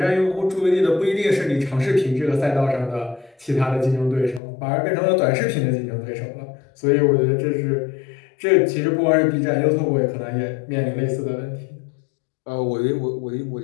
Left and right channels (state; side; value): drops out; right; at 4.4 s